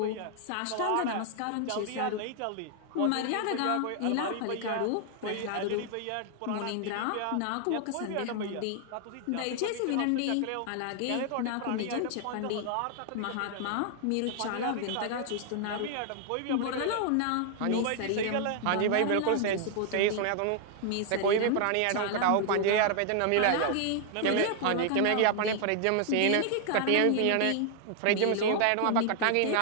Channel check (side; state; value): both; different; correlation 0.00